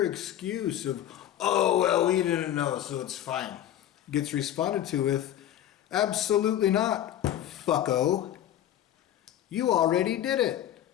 excuse of, oh, well, we didn't know, so it's fine, gets responded to with, absolutely not, fucko. You already did it.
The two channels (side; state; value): right; quieter; 11.6 dB